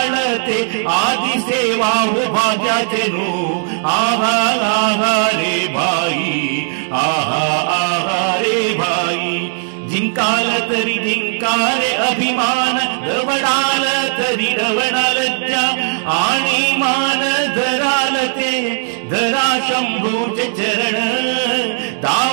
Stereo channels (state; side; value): silent; left; digital silence